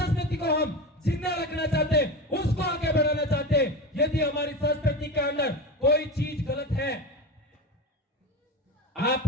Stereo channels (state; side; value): normal; both; correlation 0.25